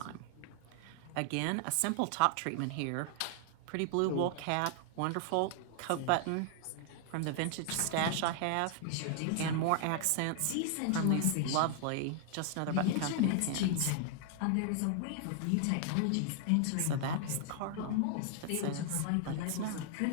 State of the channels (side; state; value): both; different; correlation 0.00